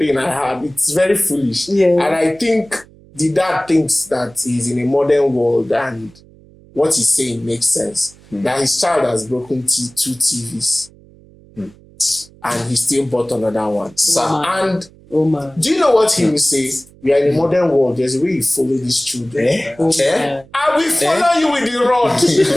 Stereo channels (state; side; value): noise; right; hum, 26 dB below the sound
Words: I had. It's very foolish. Yeah. And I think the dad thinks that he's in a modern world and what he's saying makes sense. That his child has broken 2 TVs. And he still bought another one. And do you know what he will say? We are in a modern world. There's a way you follow these children. I will follow you with the rod.